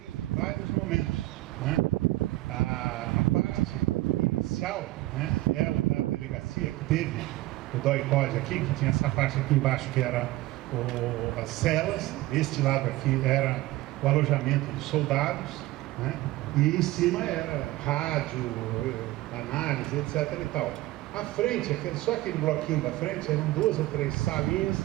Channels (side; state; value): left; quieter; 17.7 dB